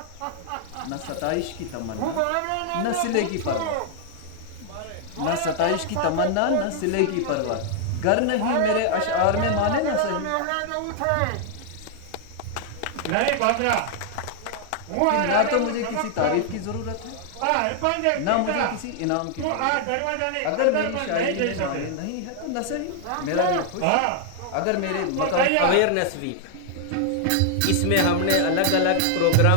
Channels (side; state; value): both; different; correlation 0.00